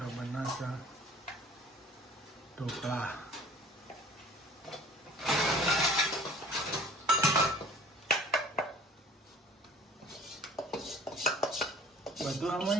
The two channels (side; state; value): both; normal; correlation 0.47